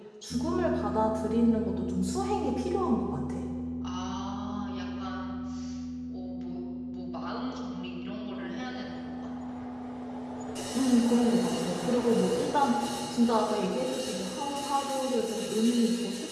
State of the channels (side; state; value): both; identical; correlation 1.00